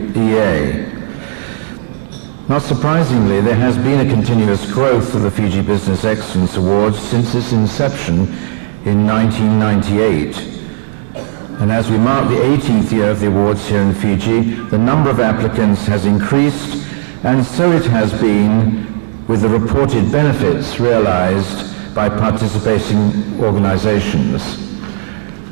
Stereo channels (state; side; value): silent; left; digital silence